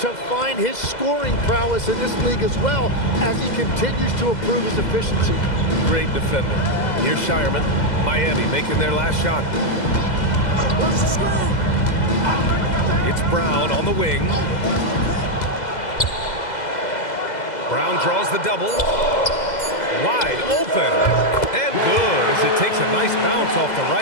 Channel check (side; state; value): right; late; 2.0 ms